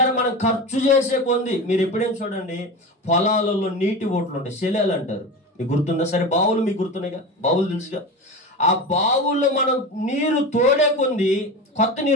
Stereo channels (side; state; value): both; normal; correlation 0.26